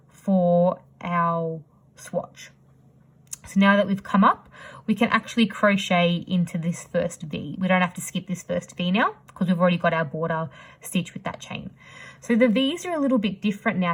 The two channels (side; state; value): both; identical; correlation 1.00